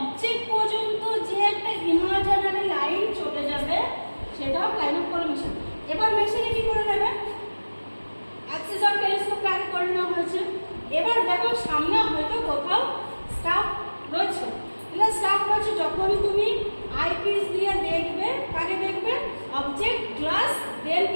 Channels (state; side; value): inverted; both; correlation -1.00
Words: পর্যন্ত যে একটা ইমাজিনারি লাইন চলে যাবে সেটাও লাইন অফ কলিমেশন। এবার মেশিনে কি করে নেবে, অ্যাক্সিস অফ টেলিস্কোপ আগে করে নেওয়া হয়েছে। এবার দেখো সামনে হয়তো কোথাও স্টাফ রয়েছে, স্টাফ রয়েছে, যখনই তুমি আইপিস দিয়ে দেখবে কাকে দেখবে, অবজেক্ট গ্লাস, দেন